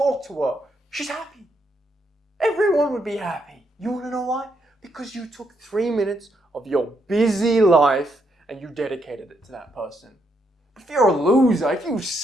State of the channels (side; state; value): both; normal; correlation 0.77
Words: to her. She's happy. Everyone would be happy. You want to know why? Because you took 3 minutes of your busy life and you dedicated it to that person. If you're a loser, if you